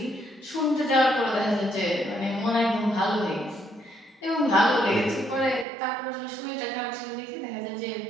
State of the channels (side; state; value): left; drops out; at 5.7 s